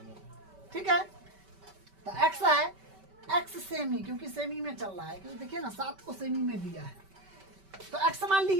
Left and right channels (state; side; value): late; left; 5.2 ms